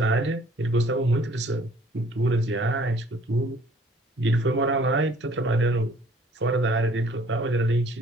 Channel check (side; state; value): both; normal; correlation 0.57